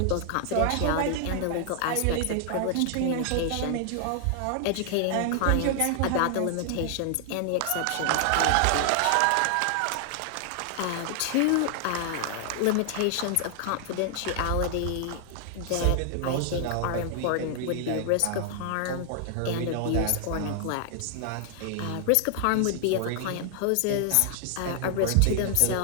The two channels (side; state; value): both; different; correlation 0.00